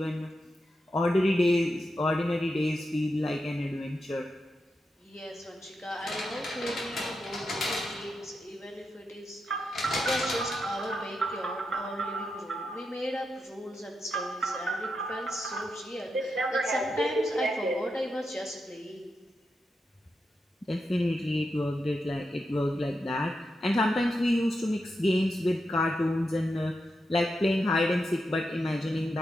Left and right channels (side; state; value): both; normal; correlation 0.86